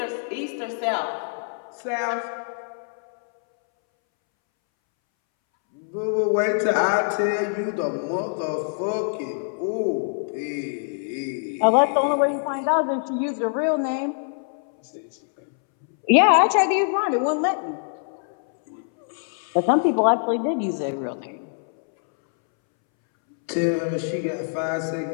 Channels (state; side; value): silent; right; 62 dB below the other